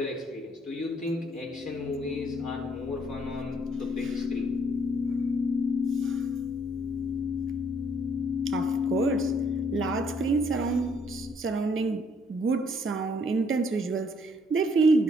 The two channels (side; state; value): both; normal; correlation 0.67